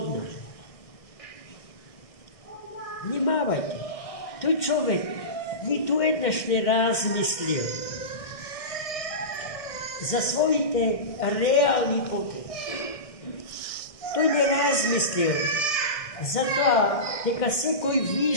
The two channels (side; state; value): right; late; 1.6 ms